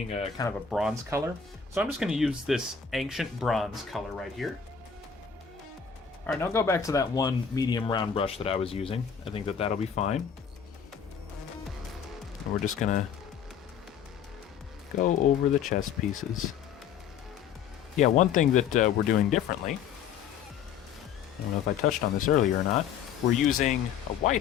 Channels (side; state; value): right; quieter; 7.4 dB